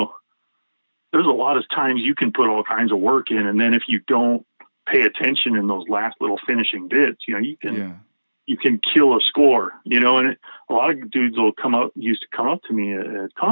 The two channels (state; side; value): inverted; both; correlation -1.00